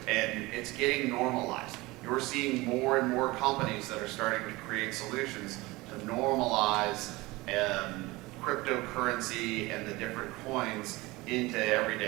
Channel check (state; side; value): quieter; left; 21.5 dB